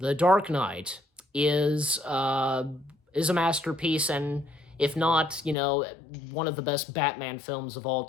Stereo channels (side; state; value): right; drops out; at 5.6 s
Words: Dark Knight is a masterpiece, and if not, one of the best Batman films of all